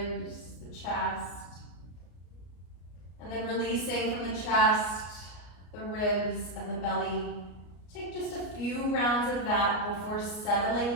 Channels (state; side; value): late; right; 33 ms